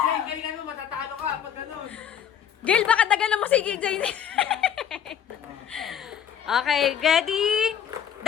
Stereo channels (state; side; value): quieter; right; 9.1 dB